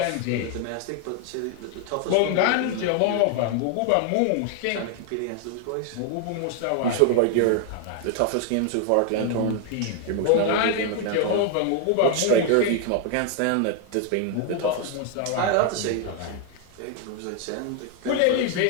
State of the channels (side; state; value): both; different; correlation 0.00